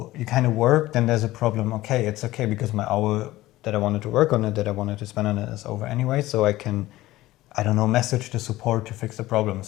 you kind of work, then there's a problem. Okay, it's okay, because my hour that I wanted to work on it, that I wanted to spend on it, is over anyway. So I can, I don't know, message the support to fix the problem.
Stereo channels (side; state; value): right; quieter; 16.8 dB